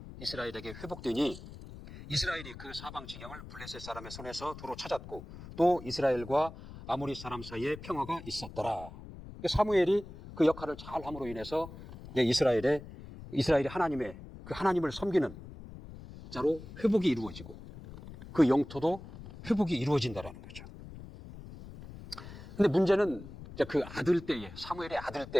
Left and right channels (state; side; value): noise; left; rumble, 14 dB below the sound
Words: 이스라엘에게 회복되니 이스라엘이 그 사방 지경을 블레셋 사람의 손에서 도로 찾았고 또 이스라엘과 아모리 사람 사이에 평화가 있었더라. 사무엘이 그 역할을 잘 함으로 인해서 이스라엘이 하나님을 섬기는 자로 회복이 이루어지고 그 영토도 회복이 이루어진다라는 거죠. 근데 문제는 그 사무엘의 아들